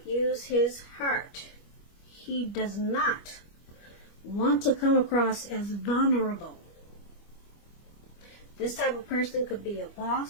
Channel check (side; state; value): right; late; 25 ms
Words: use his heart. He does not want to come across as vulnerable. This type of person could be a